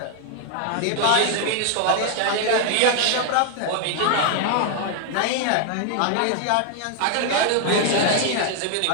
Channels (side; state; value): both; different; correlation 0.00